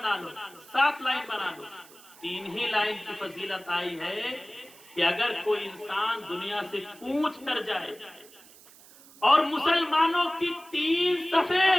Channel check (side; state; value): right; noise; hiss, 23 dB below the sound